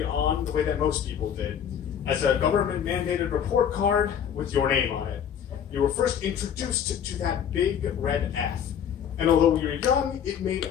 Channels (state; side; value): quieter; right; 8.6 dB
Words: on, the way that most people did, as a government-mandated report card with your name on it. You were first introduced to that big red F. And although you were young, it made